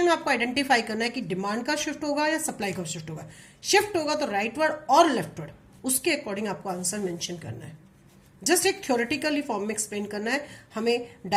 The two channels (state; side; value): identical; both; correlation 1.00